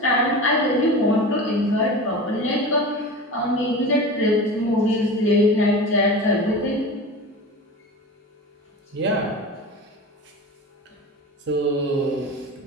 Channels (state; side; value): normal; both; correlation 0.31